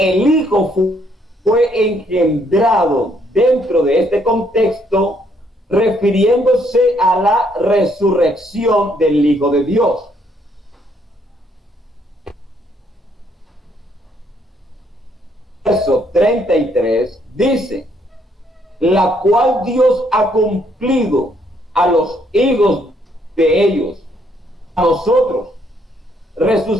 Hijo fue engendrado dentro de este contexto, refiriéndose a la resurrección del Hijo de Dios. Verso 33 dice, la cual Dios ha cumplido a los hijos de ellos, a nosotros,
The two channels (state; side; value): normal; both; correlation 0.70